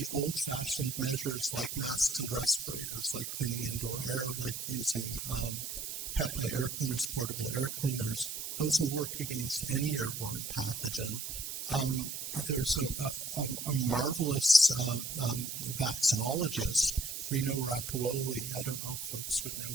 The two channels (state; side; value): noise; right; hiss, 5 dB below the sound